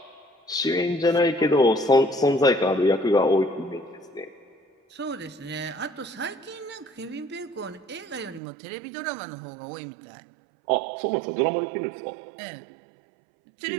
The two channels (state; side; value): drops out; left; at 8.4 s